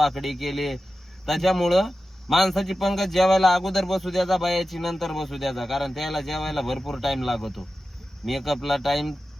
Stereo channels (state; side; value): normal; both; correlation 0.93